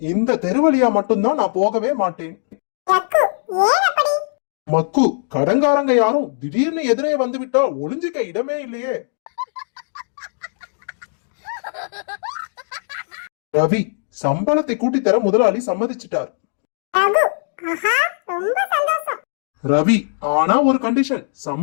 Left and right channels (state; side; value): silent; right; digital silence